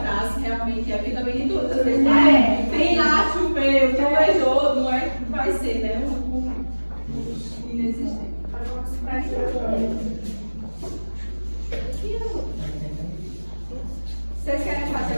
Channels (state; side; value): inverted; both; correlation -1.00